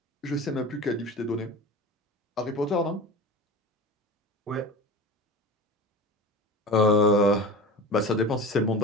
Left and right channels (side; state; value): both; normal; correlation 0.32